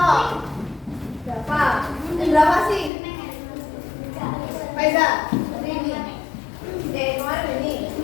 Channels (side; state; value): right; drops out; at 2.9 s